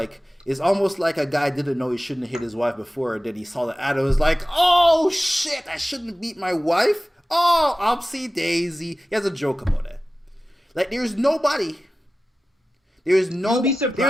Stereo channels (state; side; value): normal; both; correlation 0.95